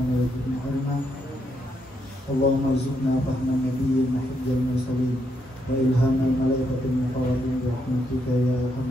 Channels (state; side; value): normal; both; correlation 0.78